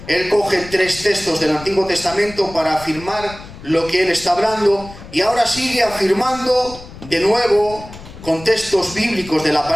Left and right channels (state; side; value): noise; left; rumble, 16 dB below the sound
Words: Él coge 3 textos del Antiguo Testamento para afirmar lo que él está hablando, y ahora sigue afirmando de nuevo con textos bíblicos de la